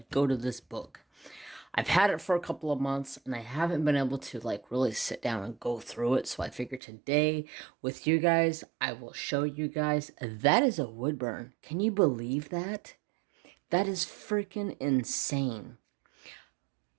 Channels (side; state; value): left; drops out; at 6.8 s